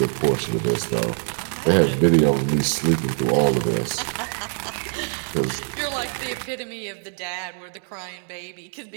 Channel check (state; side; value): silent; left; 58 dB below the other